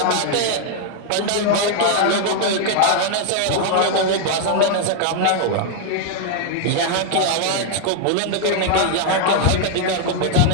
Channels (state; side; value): different; both; correlation 0.00